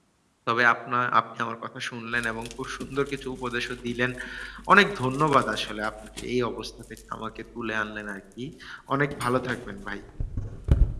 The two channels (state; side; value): identical; both; correlation 1.00